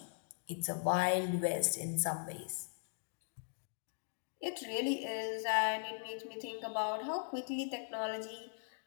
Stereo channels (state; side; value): silent; right; digital silence